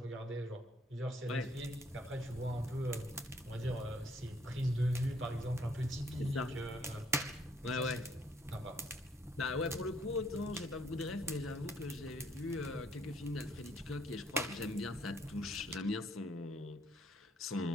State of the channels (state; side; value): normal; both; correlation 0.66